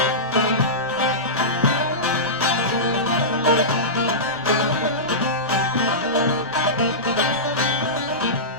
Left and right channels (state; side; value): noise; right; rumble, 23 dB below the sound